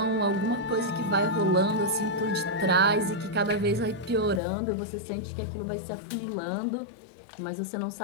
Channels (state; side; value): drops out; right; at 4.4 s